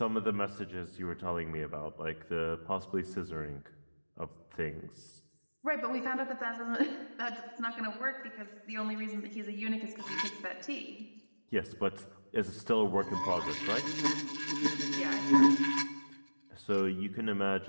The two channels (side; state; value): both; inverted; correlation -1.00